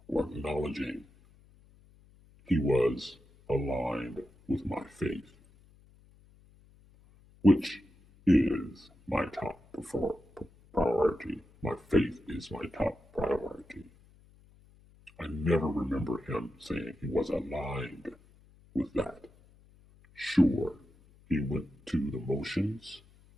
or acknowledging he was aligned with my faith, which is my top priority. My faith is my top priority. I never remember him saying he was aligned with that. Sure, he went to the motions,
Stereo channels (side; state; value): left; noise; hum, 27 dB below the sound